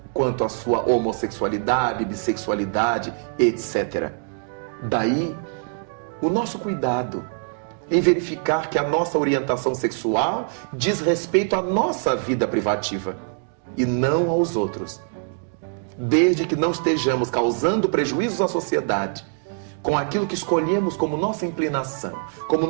quanto à sua homossexualidade, bissexualidade, etc. Daí, o nosso cuidado em verificar que a nossa orientação sexual diz respeito à nossa vida privativa e não aos outros. Desde que não estejamos causando prejuízos à sociedade com aquilo que escolhemos como nossa inclinação, como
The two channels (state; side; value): silent; left; 63 dB below the other